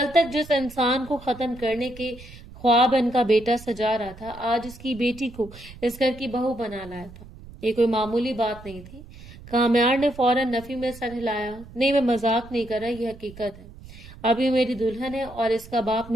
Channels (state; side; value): noise; right; rumble, 18 dB below the sound